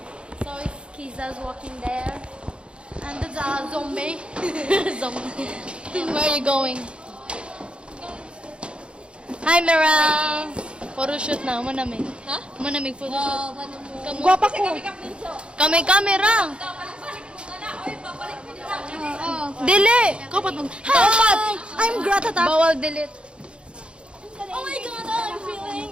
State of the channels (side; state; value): left; late; 0.057 ms